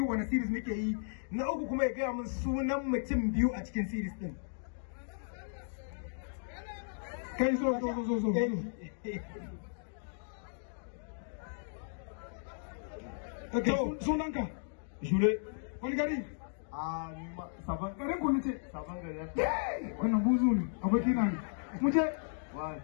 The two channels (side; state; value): right; silent; digital silence